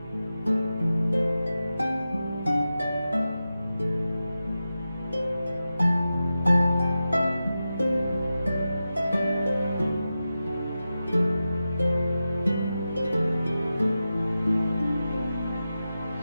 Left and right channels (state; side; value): inverted; both; correlation -0.92